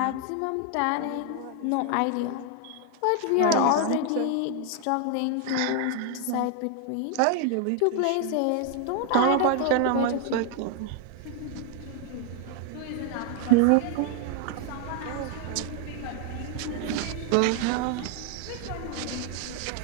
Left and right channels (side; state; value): both; different; correlation 0.00